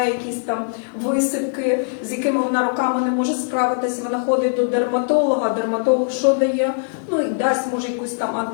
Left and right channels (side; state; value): right; silent; 65 dB below the other